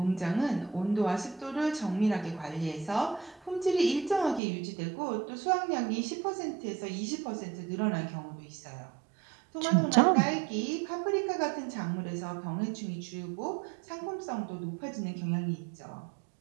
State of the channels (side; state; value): left; drops out; at 4.4 s